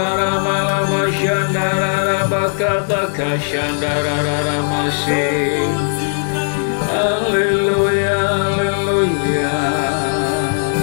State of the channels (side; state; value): right; silent; digital silence